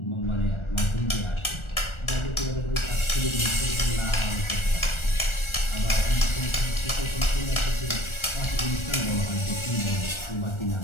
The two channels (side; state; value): right; late; 1.4 ms